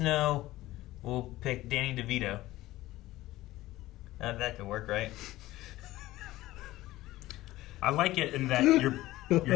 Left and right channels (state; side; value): quieter; right; 16.8 dB